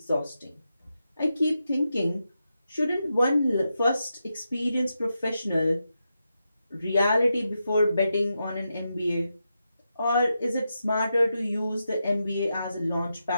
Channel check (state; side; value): inverted; both; correlation -0.87